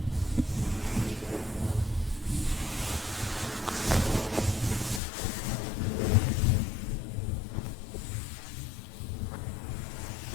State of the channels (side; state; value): right; drops out; at 5.0 s